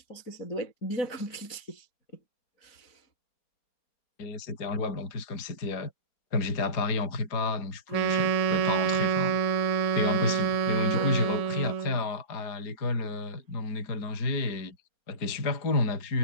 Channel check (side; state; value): right; late; 4.3 ms